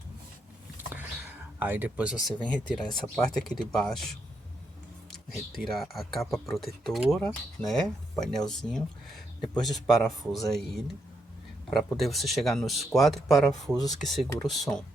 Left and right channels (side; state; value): both; normal; correlation 0.79